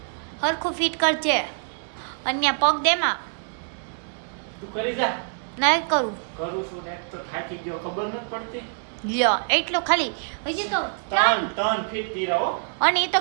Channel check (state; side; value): silent; left; digital silence